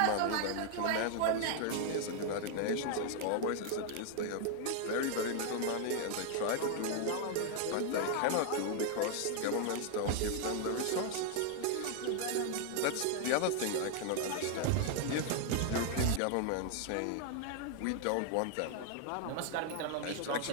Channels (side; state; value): both; different; correlation 0.00